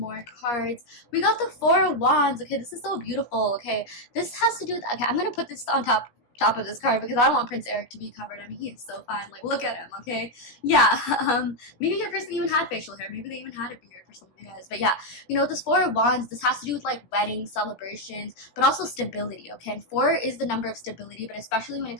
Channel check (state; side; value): late; right; 17 ms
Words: cards. We got the Four of Wands. Okay, this is so beautiful. Okay, this has to do with, okay, I'm going to put this on top of this card because I don't want Prince Eric to be covered. I mean, he is so fine. Like, look at him, okay? Yeah, maybe your person even had facial hair. Maybe they even had a beard for some of you guys. But yeah, you know, this Four of Wands, this has to do with like weddings, celebrations, but also stability, okay? And 4 is the number of stability, but especially when it